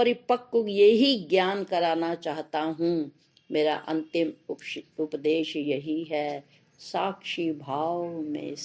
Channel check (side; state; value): both; identical; correlation 1.00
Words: यही ज्ञान कराना चाहता हूँ। मेरा अंतिम उपदेश यही है, साक्षी भाव में